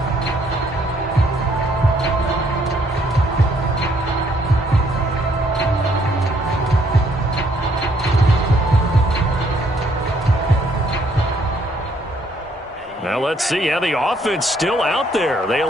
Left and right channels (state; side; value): normal; both; correlation 0.67